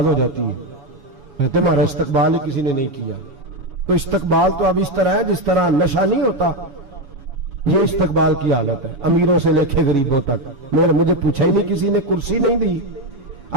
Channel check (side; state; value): left; late; 7.1 ms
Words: हो जाती है। कहते हमारा इस्तकबाल ही किसी ने नहीं किया। तो इस्तकबाल तो अब इस तरह है जिस तरह नशा नहीं होता, ये इस्तकबाल की हालत है, अमीरों से लेके गरीबों तक। मुझे पूछा ही नहीं, किसी ने कुर्सी नहीं दी,